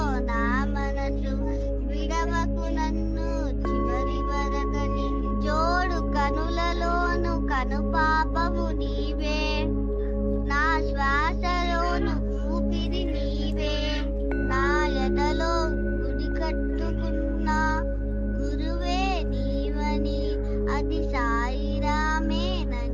నా మనసు విడవకు నన్ను చివరి వరకని. జోడు కనులలోను కనుపాపము నీవే, నా శ్వాసలోను ఊపిరి నీవే. నా ఎదలో గుడి కట్టుకున్న గురువే నీవని. అది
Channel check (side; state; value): both; identical; correlation 1.00